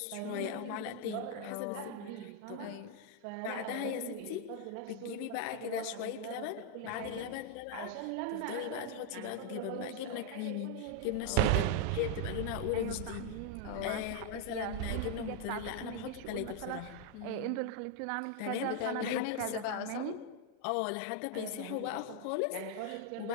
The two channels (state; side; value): different; both; correlation 0.00